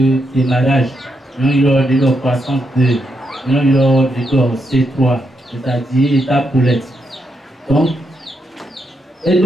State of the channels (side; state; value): both; normal; correlation 0.81